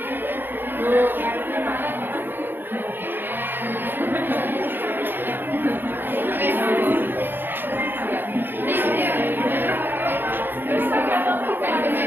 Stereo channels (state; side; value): late; left; 0.095 ms